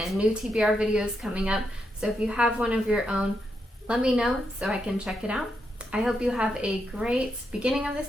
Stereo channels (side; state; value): both; normal; correlation 0.82